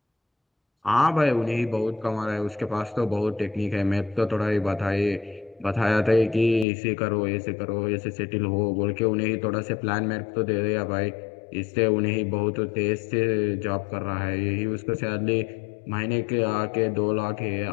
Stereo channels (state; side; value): drops out; right; at 6.7 s